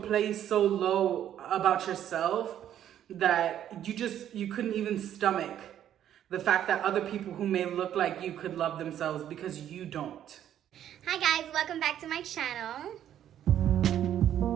place so low about yourself that you couldn't even stomach the fact that other people who may look like you could love themselves because you don't. Hi guys, welcome back to my channel.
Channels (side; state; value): left; quieter; 10.7 dB